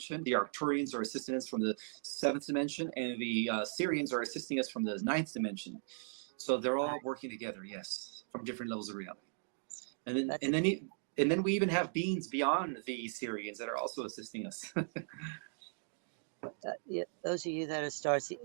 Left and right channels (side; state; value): left; silent; digital silence